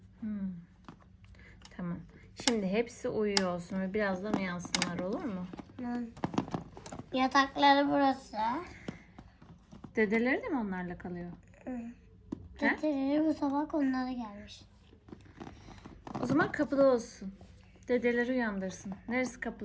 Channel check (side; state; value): both; identical; correlation 1.00